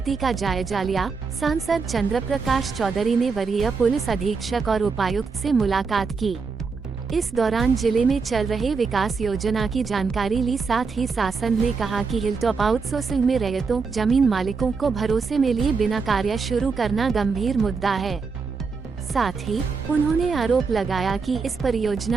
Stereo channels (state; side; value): quieter; left; 4.9 dB